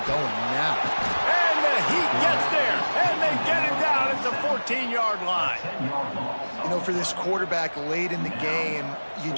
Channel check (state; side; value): inverted; both; correlation -1.00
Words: going now. And the Heat gets there, and they get it down at the 14-yard line. You know, for this quarterback late in the game, you